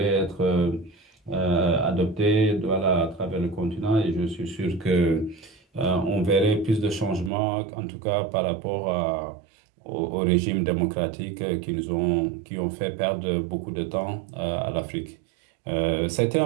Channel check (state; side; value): drops out; left; at 7.3 s